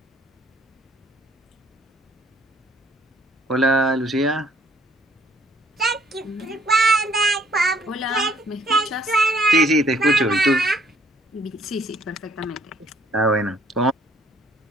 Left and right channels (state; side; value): normal; both; correlation 0.62